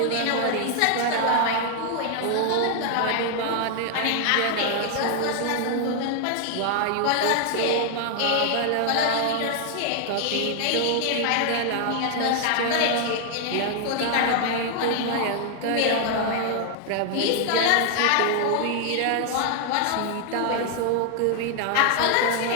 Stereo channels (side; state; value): both; different; correlation 0.00